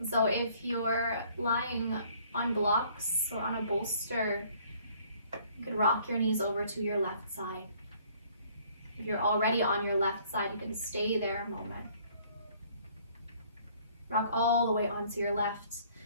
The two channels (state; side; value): inverted; both; correlation -0.60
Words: So if you're lying on blocks or on a bolster, you could rock your knees over to your left side. If you're already on your left side, you can stay there a moment. Rock all the way onto your left